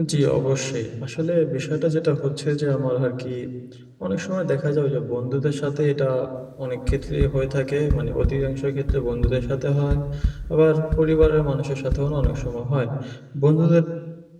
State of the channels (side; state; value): both; identical; correlation 1.00